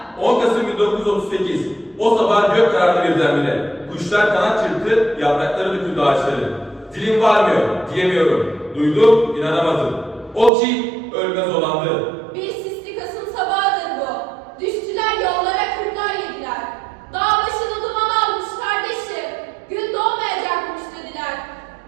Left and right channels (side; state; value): left; drops out; at 10.5 s